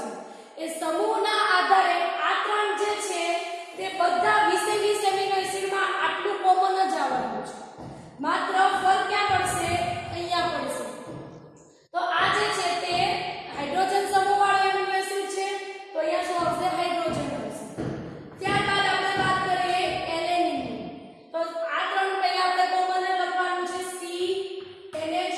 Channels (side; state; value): both; identical; correlation 1.00